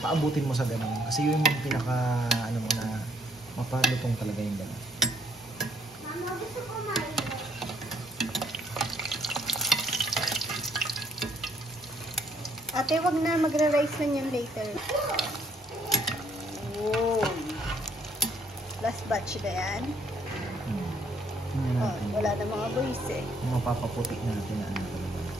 mo sa ganun. Kasi yun yung pinaka, ano mo na, mapalutong talaga yung ganun. Mama, gusto ko mainit. Ate, wag na. Magra-rice na yan later. Wow. Last batch na yan. Tingnan Oh, natin. wala na mga boys eh. Yung mapapaputi natin na ano talaga.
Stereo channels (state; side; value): normal; both; correlation 0.67